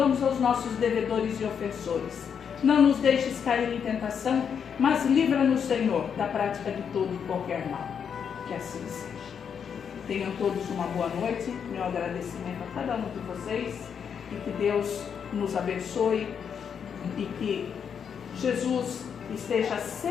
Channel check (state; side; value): quieter; right; 7.3 dB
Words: aos nossos devedores e ofensores. Não nos deixes cair em tentação, mas livra-nos, Senhor, da prática de todo e qualquer mal. Que assim seja. Tenham todos uma boa noite. Meu agradecimento a cada um de vocês. E que Deus nos abençoe. E que Jesus esteja